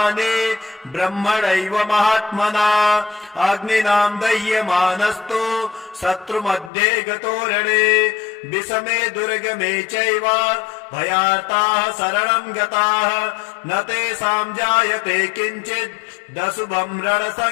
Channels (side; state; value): right; drops out; at 6.7 s